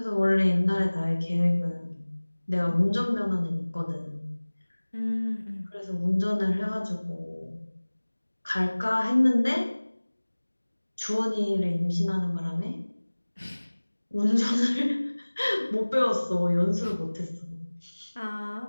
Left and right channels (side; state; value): both; inverted; correlation -1.00